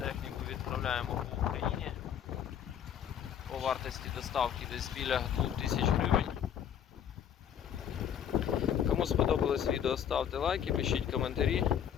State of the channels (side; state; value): right; quieter; 9.1 dB